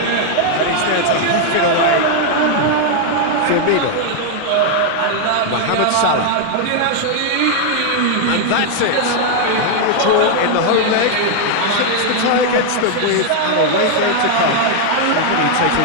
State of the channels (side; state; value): both; different; correlation 0.00